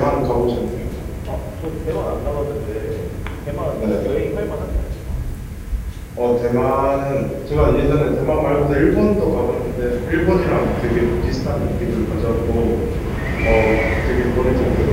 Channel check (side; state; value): both; identical; correlation 1.00